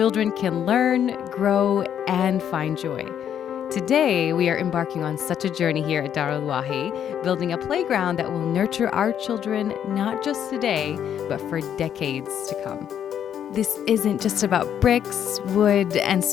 can learn, grow, and find joy. Today, we are embarking on such a journey here at Darul Wahi, building a playground that will nurture our children not just today, but for decades to come. This isn't just about bricks, wood, and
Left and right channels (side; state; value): right; quieter; 9.4 dB